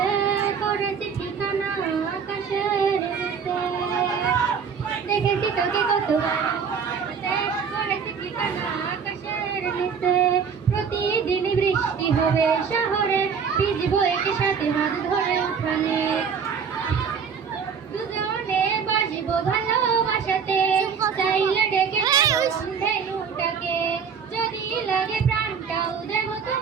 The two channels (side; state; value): left; quieter; 6.5 dB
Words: করেছি ঠিকানা আকাশের নিচে। দেখেছি তোকে কতবার করেছি ঠিকানা আকাশের নিচে। প্রতিদিনই বৃষ্টি হবে শহরে, ভিজবো একই সাথে হাত ধরে উঠানে। দুজনে বাসবো ভালোবাসাতে, চাইলে ডেকে ধেনুটাকে। যদি লাগে প্রাণটাও দেব